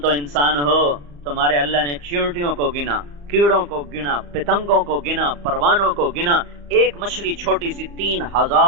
انسان ہو, تمہارے اللہ نے چیونٹیوں کو گنا, کیڑوں کو گنا, پتنگوں کو گنا, پروانوں کو گنا. ایک مچھلی چھوٹی سی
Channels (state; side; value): late; left; 35 ms